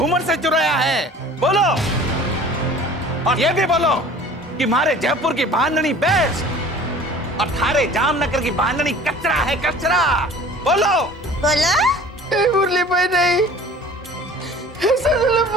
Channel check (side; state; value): both; normal; correlation 0.45